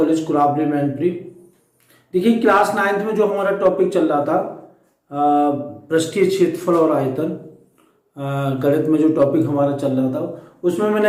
कुराबली Mainpuri. देखिए, क्लास 9th में जो हमारा टॉपिक चल रहा था पृष्ठीय क्षेत्रफल और आयतन, गणित में जो टॉपिक हमारा चल रहा था उसमें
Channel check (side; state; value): both; identical; correlation 1.00